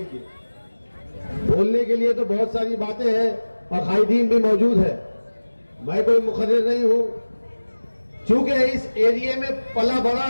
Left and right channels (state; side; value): inverted; both; correlation -1.00